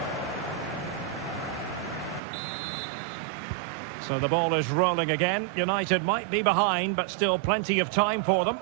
So the ball is rolling again. United might be behind, but still plenty of time for them.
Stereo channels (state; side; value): drops out; left; at 2.2 s